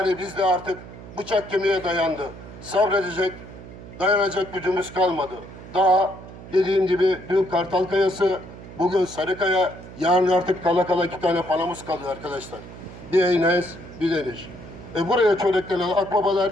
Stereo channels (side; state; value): right; noise; hum, 15 dB below the sound